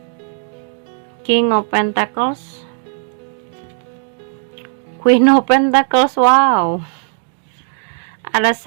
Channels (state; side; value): silent; left; 60 dB below the other